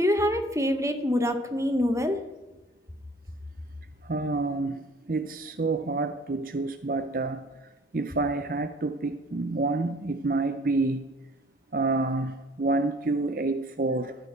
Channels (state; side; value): normal; both; correlation 0.52